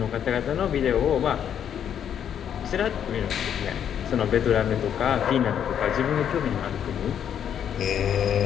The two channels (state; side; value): quieter; right; 9.0 dB